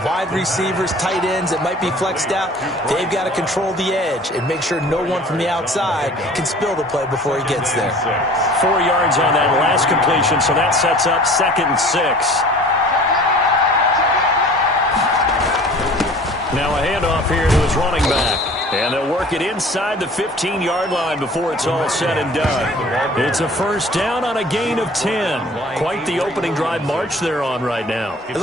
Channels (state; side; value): normal; both; correlation 0.46